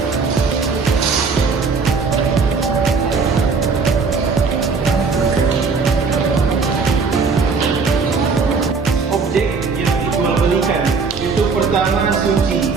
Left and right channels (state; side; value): quieter; left; 4.9 dB